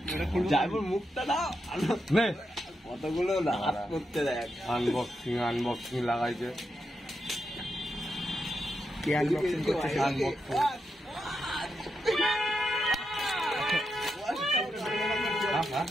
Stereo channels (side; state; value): both; normal; correlation 0.85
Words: যাইবর মুখটা দাও নে কতগুলো হাত করতে দেখ আনবক্সিং লাগাইছে কি আনবক্সিং করছে আনবক্সিং